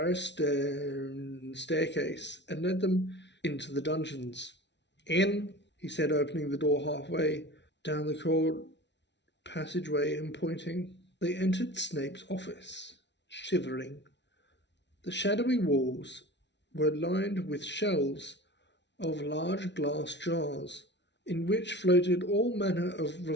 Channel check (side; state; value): right; late; 0.51 ms